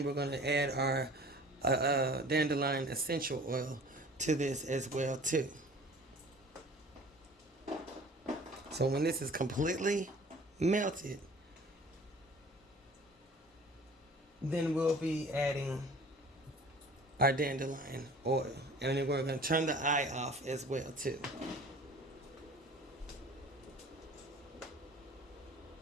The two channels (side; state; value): both; normal; correlation 0.46